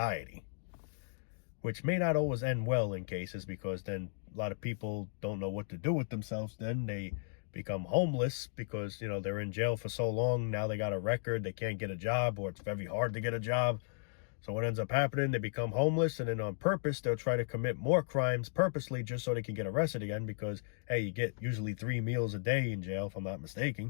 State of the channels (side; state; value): right; silent; digital silence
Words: Which may not always end well in cases, because then a lot of people don't know what to do with themselves. Then they become homeless because, you know, they're in jail for so long. Now they got a record. They can't get a job, or it's very hard to get a job. So what ends up happening, they become homeless, and then on purpose, they'll try to commit more crimes purposely just so they can get arrested again because, hey, you get usually 3 meals a day in jail, if I'm not